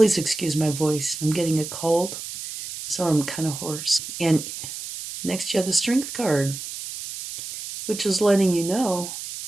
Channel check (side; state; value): right; noise; hiss, 9 dB below the sound